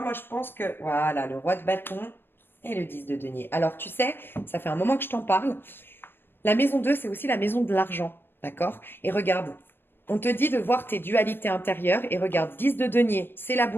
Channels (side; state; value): right; late; 0.10 ms